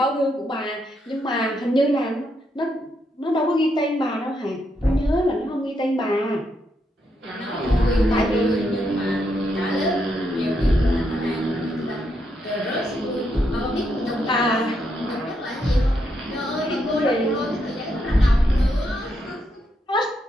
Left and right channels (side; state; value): both; normal; correlation 0.79